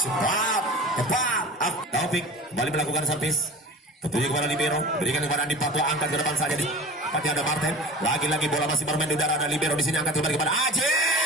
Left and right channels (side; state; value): both; normal; correlation 0.37